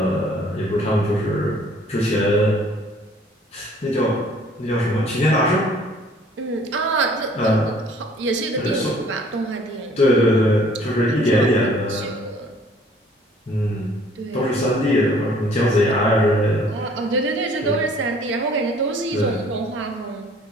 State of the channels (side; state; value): both; normal; correlation 0.56